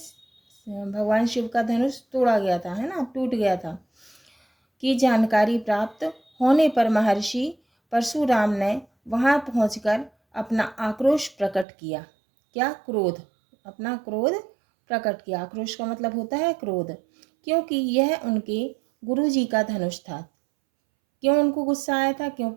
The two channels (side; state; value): left; drops out; at 11.7 s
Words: भगवान शिव का धनुष तोड़ा गया था, है ना, टूट गया था, की जानकारी प्राप्त होने पर महर्षि परशुराम ने वहां पहुंचकर अपना आक्रोश प्रकट किया। क्या? क्रोध, अपना क्रोध प्रकट किया। आक्रोश का मतलब होता है क्रोध, क्योंकि यह उनके गुरु जी का धनुष था। क्यों उनको गुस्सा आया था?